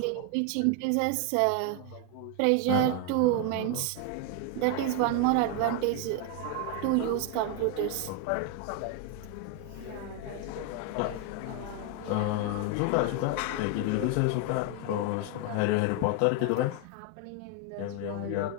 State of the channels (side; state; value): both; different; correlation 0.01